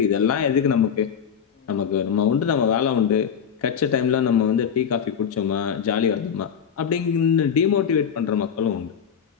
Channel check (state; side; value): quieter; right; 7.7 dB